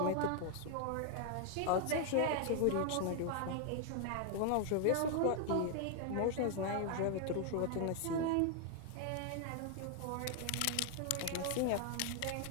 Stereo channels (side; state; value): both; different; correlation 0.00